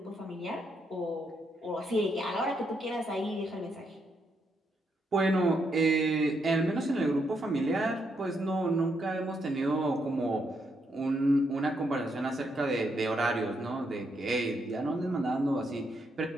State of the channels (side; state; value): both; normal; correlation 0.78